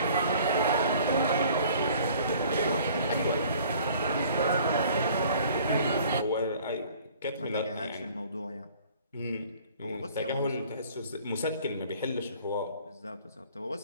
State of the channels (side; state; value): both; inverted; correlation -0.52